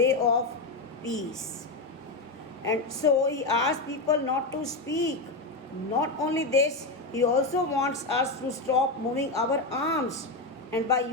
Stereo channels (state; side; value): quieter; right; 3.2 dB